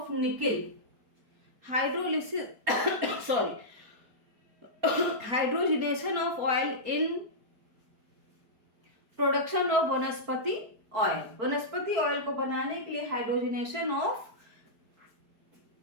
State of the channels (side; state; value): left; late; 4.3 ms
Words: nickel. Hydrolysis hydrogenation of oil in production of vanaspati oil. Vanaspati oil को बनाने के लिए hydrogenation of